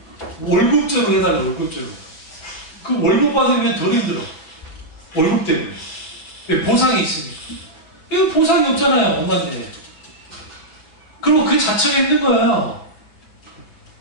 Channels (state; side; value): late; right; 6.1 ms